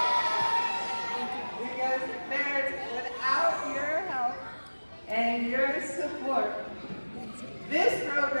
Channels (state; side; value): inverted; both; correlation -1.00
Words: Because parents, without your help and your support, this